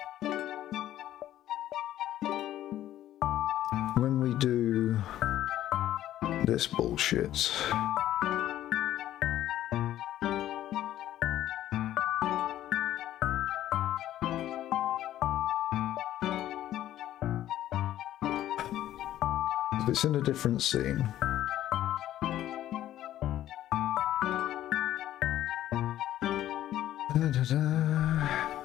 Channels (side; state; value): right; quieter; 12.8 dB